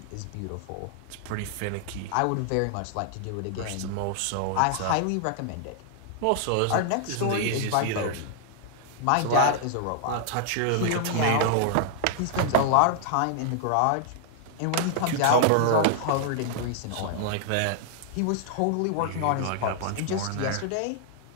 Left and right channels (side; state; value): both; different; correlation -0.01